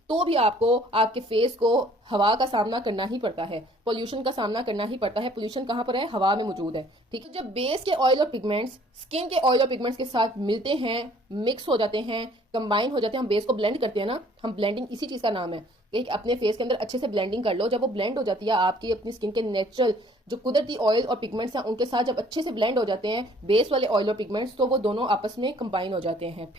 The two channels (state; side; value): normal; both; correlation 0.57